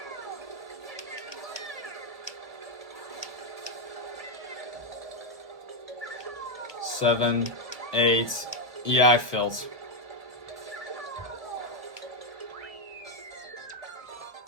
Seven, 8. Yeah, I failed.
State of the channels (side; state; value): left; late; 1.2 ms